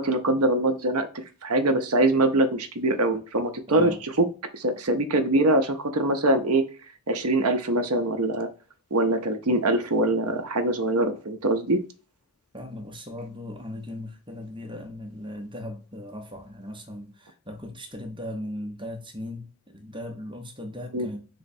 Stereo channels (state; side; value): normal; both; correlation -0.01